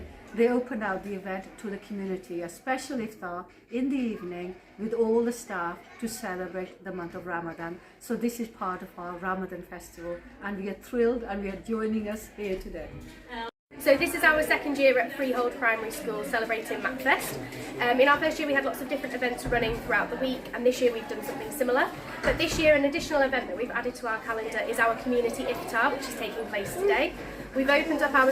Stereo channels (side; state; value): both; identical; correlation 1.00